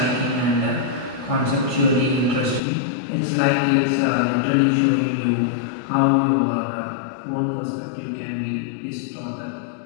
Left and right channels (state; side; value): drops out; right; at 2.6 s